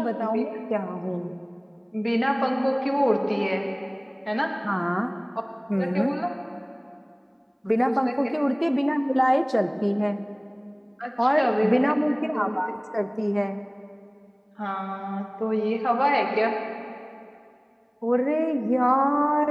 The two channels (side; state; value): both; identical; correlation 1.00